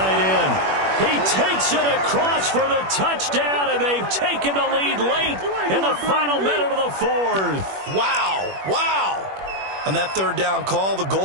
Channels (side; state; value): left; late; 21 ms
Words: end. He takes it across for the touchdown, and they've taken the lead late in the final minute of the 4th. Wow. On that 3rd down call, the